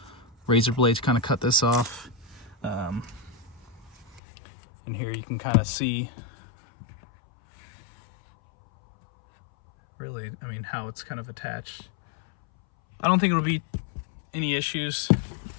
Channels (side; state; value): right; drops out; at 4.2 s